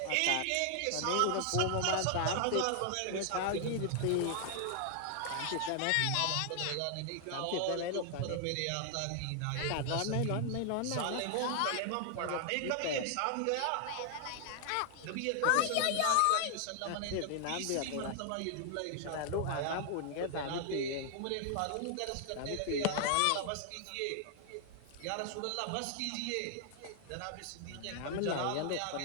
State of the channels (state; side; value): different; both; correlation 0.00